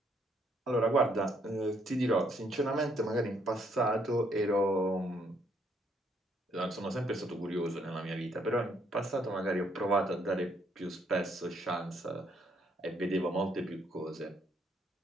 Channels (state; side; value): normal; both; correlation 0.70